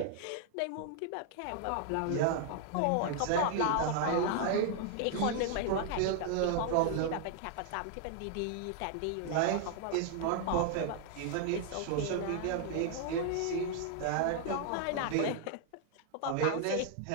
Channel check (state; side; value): different; both; correlation 0.00